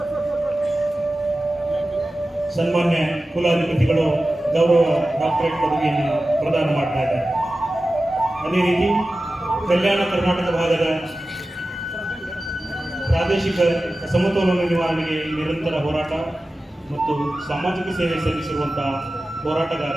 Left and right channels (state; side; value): normal; both; correlation 0.95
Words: ಸನ್ಮಾನ್ಯ ಕುಲಾಧಿಪತಿಗಳು ಗೌರವ ಡಾಕ್ಟರೇಟ್ ಪದವಿಯನ್ನು ಪ್ರದಾನ ಮಾಡ್ತಾ ಇದ್ದಾರೆ. ಅದೇ ರೀತಿ ಕಲ್ಯಾಣ ಕರ್ನಾಟಕ ಭಾಗದ ಪ್ರಾದೇಶಿಕ ಸಮತೋಲನ ನಿವಾರಣೆಗೆ ನಿರಂತರ ಹೋರಾಟ ಮತ್ತು ಸಾಮಾಜಿಕ ಸೇವೆ ಸಲ್ಲಿಸಿರುವಂತಹ